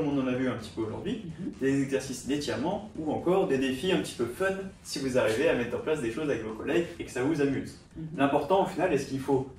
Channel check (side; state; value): both; identical; correlation 1.00